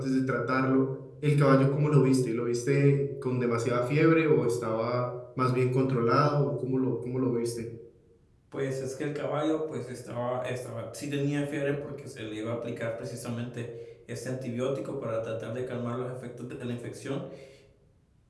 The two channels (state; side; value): identical; both; correlation 1.00